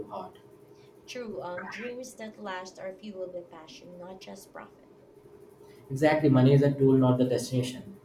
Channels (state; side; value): identical; both; correlation 1.00